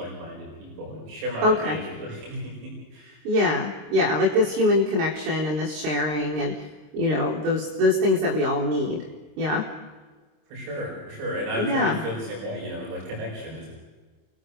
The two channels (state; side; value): late; left; 26 ms